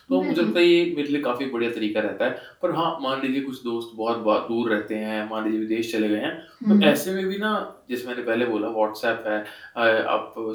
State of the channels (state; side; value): identical; both; correlation 1.00